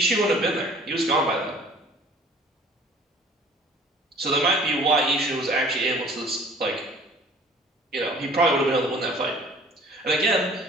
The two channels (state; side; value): normal; both; correlation 0.51